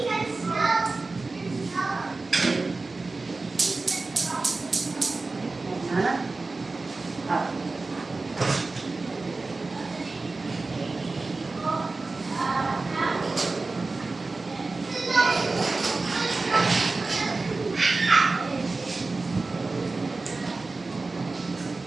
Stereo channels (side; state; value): left; quieter; 3.6 dB